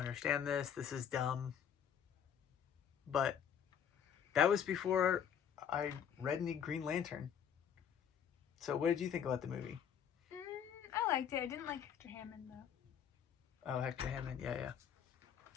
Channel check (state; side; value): quieter; right; 8.3 dB